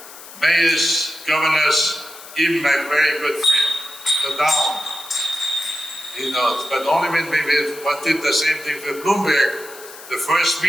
mayors, governors, even my very good friend, the Down. You know, but only when we did the same thing for Bloomberg, the first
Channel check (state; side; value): noise; left; hiss, 17 dB below the sound